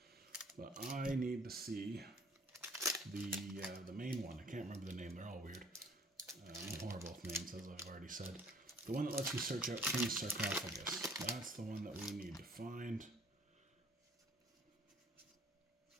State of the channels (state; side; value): normal; both; correlation 0.55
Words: But I need to see the main one. I can't remember the name, they're all weird. I'm horrible with names, as I've already said. The one that lets you search out King's Sarcophagus. That's the one that we need to find.